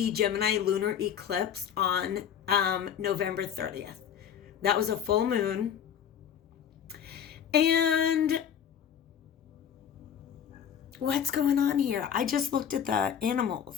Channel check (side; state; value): right; quieter; 8.8 dB